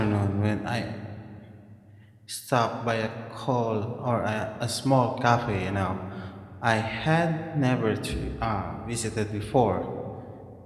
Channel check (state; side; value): identical; both; correlation 1.00